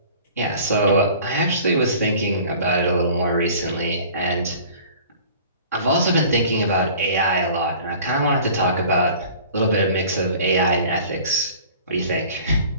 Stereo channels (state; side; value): inverted; both; correlation -0.46